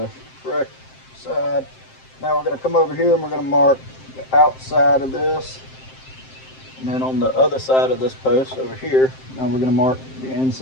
correct side. Now we're going to come over here and we're going to mark the outside of this. And then on the other side of this post over here, now we're going to mark the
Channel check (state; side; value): late; right; 7.6 ms